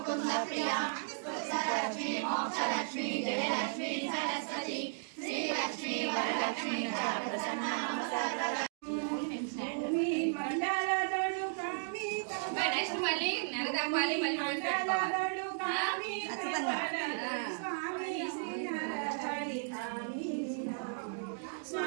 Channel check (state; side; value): silent; left; digital silence